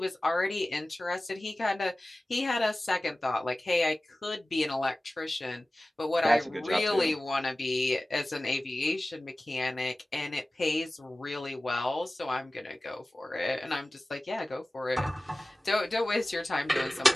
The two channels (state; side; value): normal; both; correlation 0.97